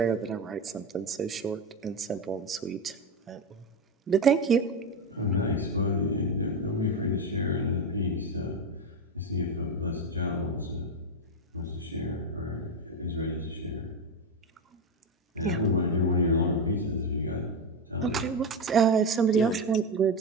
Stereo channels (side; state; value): both; normal; correlation 0.13